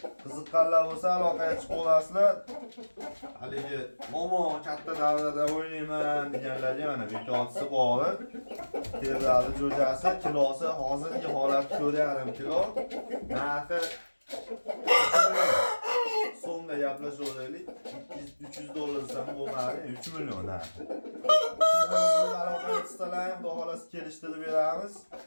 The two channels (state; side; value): inverted; both; correlation -1.00